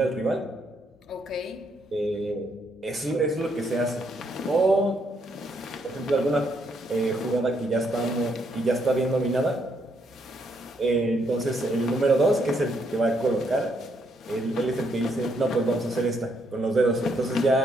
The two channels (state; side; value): normal; both; correlation 0.74